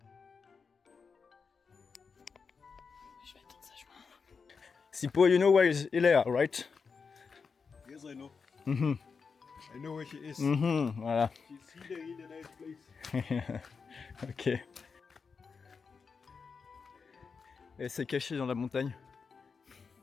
Je vais attendre sagement. Sipo, you know where is Léa, right? Yes, I know. Mhm. I know where she is. Mhm, voilà. She's here in a nice place. Ok. Elle s'est cachée dans la montagne.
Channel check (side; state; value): right; quieter; 5.3 dB